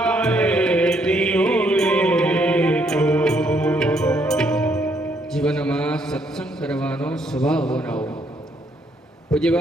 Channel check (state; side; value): normal; both; correlation 0.71